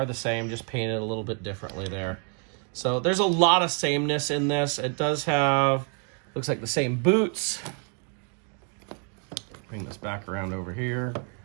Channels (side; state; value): left; quieter; 38.3 dB